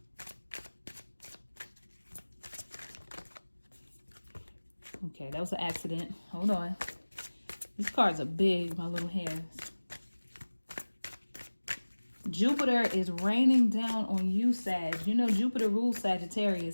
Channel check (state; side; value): inverted; both; correlation -1.00